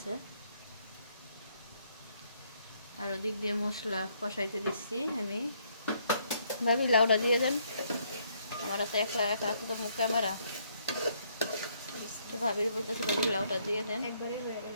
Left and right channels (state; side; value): inverted; both; correlation -0.70